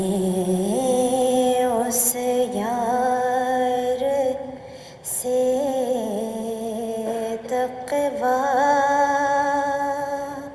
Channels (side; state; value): both; identical; correlation 1.00